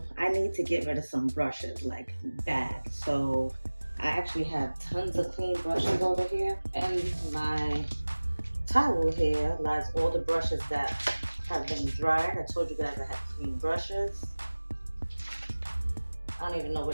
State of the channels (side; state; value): both; inverted; correlation -1.00